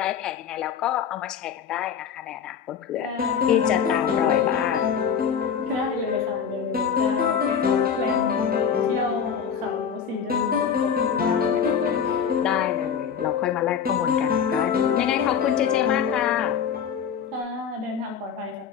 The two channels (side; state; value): right; quieter; 7.4 dB